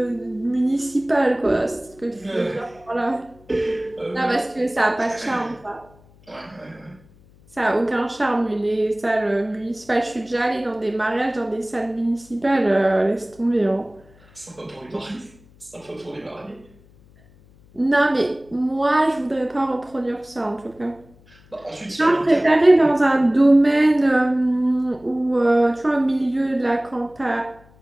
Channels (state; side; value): noise; left; hum, 28 dB below the sound